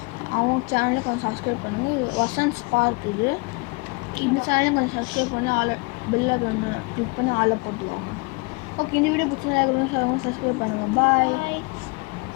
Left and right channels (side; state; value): right; quieter; 28.5 dB